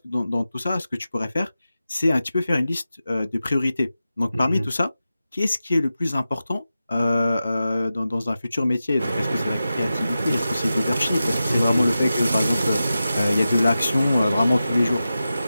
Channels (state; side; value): inverted; both; correlation -0.93